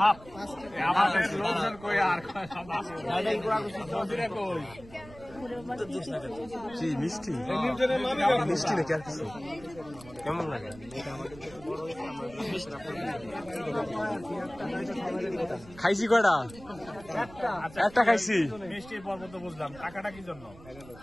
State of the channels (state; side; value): noise; right; rumble, 20 dB below the sound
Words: হাফ লোকজন কই আর মিষ্টি মিষ্টি নাকি আর কিছু কেমন লাগে খাইছি কয়টা একটা খাইছি মিষ্টির পর্ব তো বুঝলাম টাকাটা কি জন্য